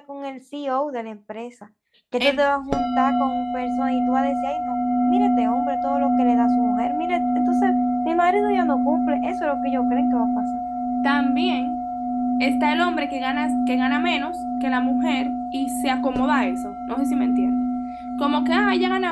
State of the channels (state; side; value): identical; both; correlation 1.00